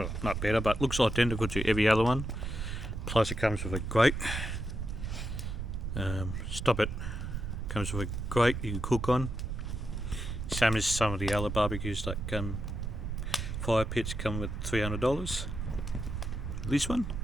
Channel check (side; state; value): right; noise; rumble, 4 dB below the sound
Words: not better, but looks identical to every other one. Plus it comes with a grate. Stop it. Comes with a grate you can cook on. Same as some of the other barbecues like fire pits come with $300. This one